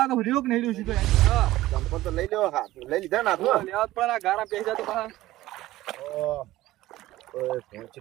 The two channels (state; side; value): quieter; left; 16.3 dB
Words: તો રહ્યો કે નહીં રહ્યો સીધો. હા ચંપલ તો લઈ લેવો હાથ લઈ લીધા ના તો લેવા પણ આ ગારા પેઈ જા તો બહાર ઓય